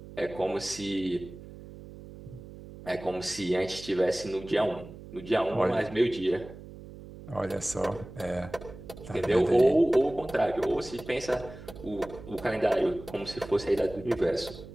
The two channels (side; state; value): right; noise; hum, 15 dB below the sound